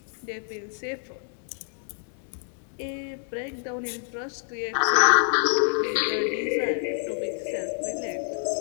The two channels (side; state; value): right; silent; 60 dB below the other